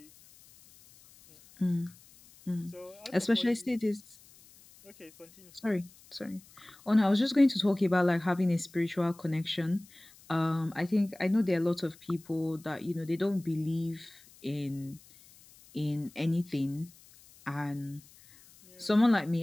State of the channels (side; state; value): left; noise; hiss, 25 dB below the sound